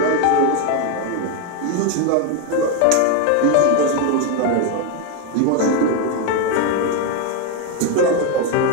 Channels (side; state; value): both; different; correlation 0.02